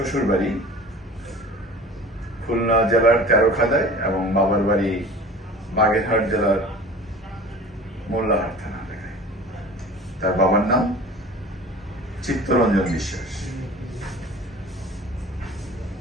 বাড়ি খুলনা জেলার তেরোখাদায় এবং বাবার বাড়ি বাগেরহাট জেলার মোল্লাহাট থানা এলাকায়। তার বাবার নাম চিত্তরঞ্জন বিশ্বাস।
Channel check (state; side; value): normal; both; correlation 0.41